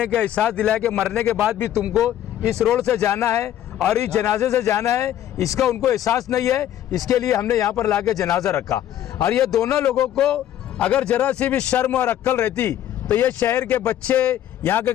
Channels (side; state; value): right; quieter; 11.7 dB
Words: एहसास दिलाया कि मरने के बाद भी तुमको इस रोड से जाना है और इस जनाजे से जाना है, इसका उनको एहसास नहीं है। इसके लिए हमने यहाँ पर लाके जनाजा रखा। और ये दोनों लोगों को अगर जरा सी भी शर्म और अक्ल रहती तो ये शहर के बच्चे, यहाँ के